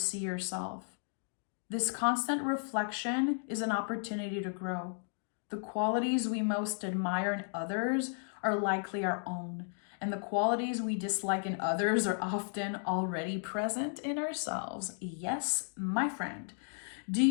yourself. This constant reflection is an opportunity to grow. The qualities we most admire in others are likely our own, and the qualities we dislike in others are often already present in ourselves. Yes, my friend. Do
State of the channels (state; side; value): silent; right; 55 dB below the other